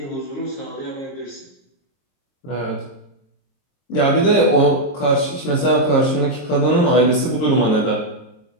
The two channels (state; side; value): late; right; 22 ms